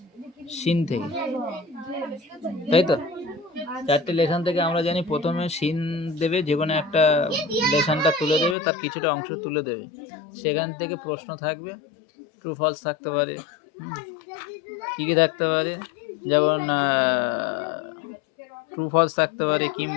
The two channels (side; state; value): right; drops out; at 8.6 s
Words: সিন থেকে, তাই তো? 4টে লেসন থেকে আমরা জানি প্রথমে সিন দেবে, যে কোনো একটা লেসনটা তুলে দেবে, তার কিছুটা অংশ তুলে দেবে, সেখান থেকে প্রশ্ন থাকবে, ট্রু ফলস থাকতে পারে। কী কী থাকতে পারে? যেমন ট্রু ফলস থাকতে পারে,